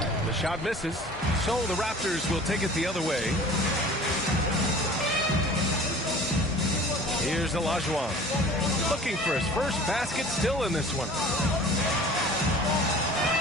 The shot misses, so the Raptors will take it the other way. Here's Olajuwon, looking for his first basket, still in this one.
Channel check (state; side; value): normal; both; correlation 0.44